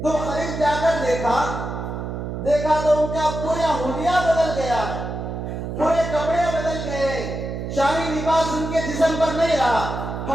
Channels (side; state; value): right; noise; hum, 5 dB below the sound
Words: تو قریب جا کر دیکھا تو ان کا پورا حلیہ بدل گیا ہے، پورے کپڑے بدل گئے، شاہی لباس ان کے جسم پر نہیں رہا،